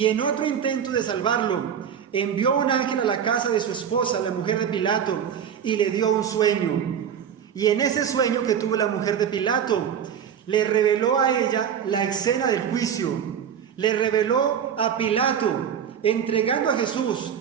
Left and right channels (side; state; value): left; quieter; 8.3 dB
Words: en otro intento de salvarlo, envió un ángel a la casa de su esposa, la mujer de Pilato, y le dio un sueño. Y en ese sueño que tuvo la mujer de Pilato, le reveló a ella la escena del juicio. Le reveló a Pilato entregando a Jesús